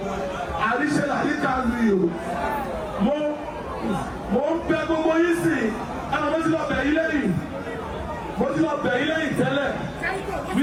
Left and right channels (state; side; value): identical; both; correlation 1.00